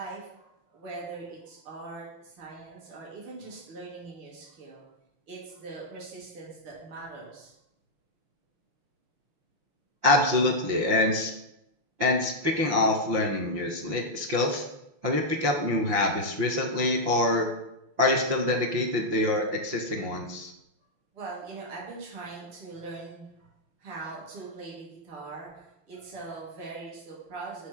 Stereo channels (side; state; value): left; late; 5.9 ms